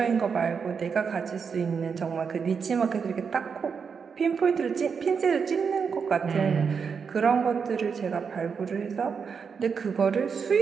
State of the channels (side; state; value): left; quieter; 6.0 dB